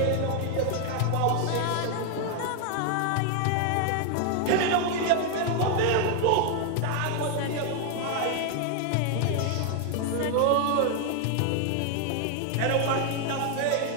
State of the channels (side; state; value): both; different; correlation 0.00